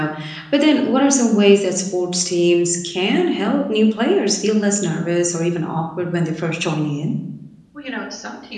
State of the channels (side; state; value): both; identical; correlation 1.00